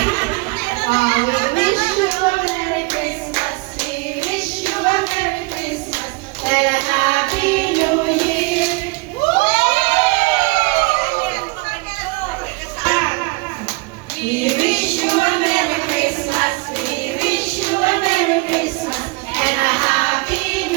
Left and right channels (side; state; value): left; quieter; 26.0 dB